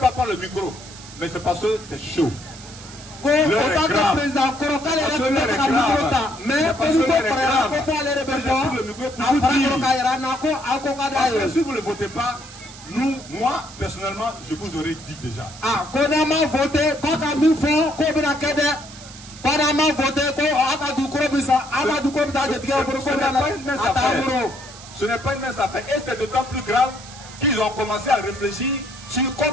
prendre le micro, mais c'est parce que c'est chaud. Si vous ne votez pas, moi, personnellement, je vous aurais dit déjà. Ce n'est pas une mince affaire. Et c'est d'autant plus grave qu'ils ont commencé à réfléchir sur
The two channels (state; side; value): noise; right; hiss, 17 dB below the sound